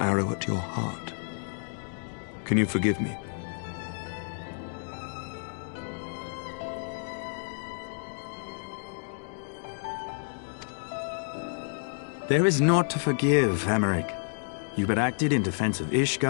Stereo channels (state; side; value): silent; right; digital silence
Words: at your heart. Can you forgive me? There is naught to forgive, Hameric. You but acted in defense of